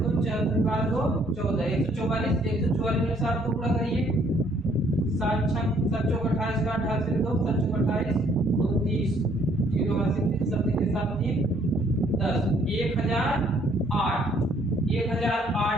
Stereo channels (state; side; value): normal; both; correlation 0.64